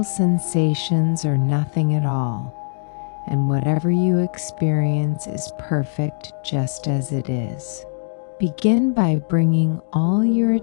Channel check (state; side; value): silent; right; digital silence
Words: sensations or nothing at all, and whatever you experience is perfect just as it is. Begin by bringing all your